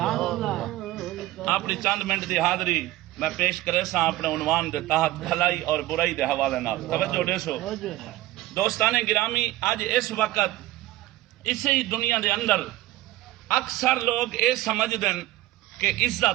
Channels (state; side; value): quieter; left; 16.7 dB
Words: اپنی چند منٹ دی حاضری میں پیش کرے سا اپنے عنوان دے تحت بھلائی اور برائی دے حوالے نال توجہ دیسو دوستان گرامی۔ اج اس وقت اسی دنیا دے اندر اکثر لوگ اے سمجھ دن کہ